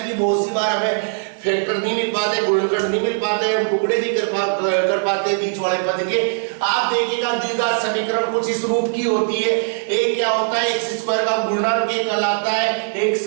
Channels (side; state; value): left; silent; digital silence